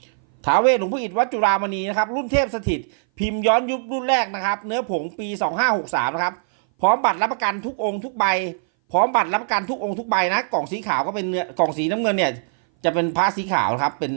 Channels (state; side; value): silent; left; 59 dB below the other